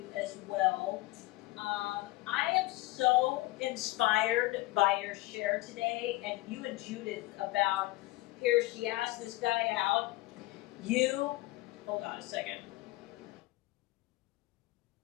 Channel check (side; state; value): right; quieter; 19.8 dB